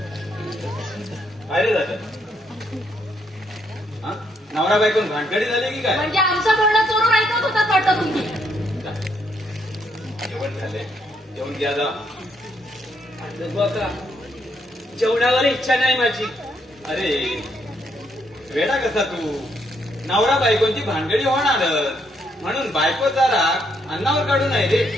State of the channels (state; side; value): normal; both; correlation 0.74